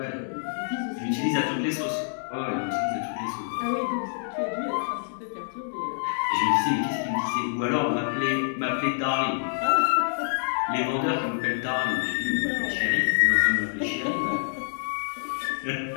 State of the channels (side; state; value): right; silent; digital silence